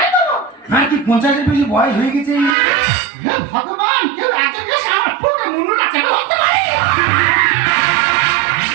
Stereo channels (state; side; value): drops out; left; at 2.6 s